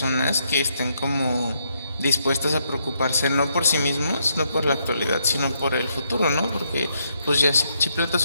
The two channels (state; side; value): inverted; both; correlation -0.76